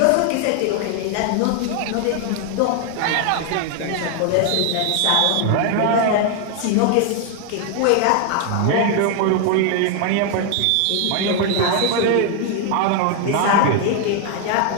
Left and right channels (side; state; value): both; different; correlation 0.00